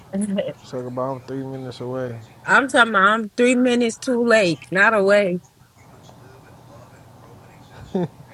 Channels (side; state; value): both; identical; correlation 1.00